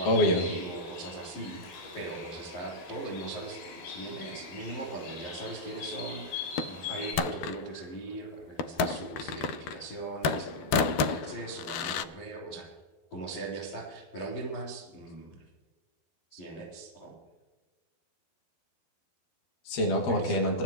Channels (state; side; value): late; right; 12 ms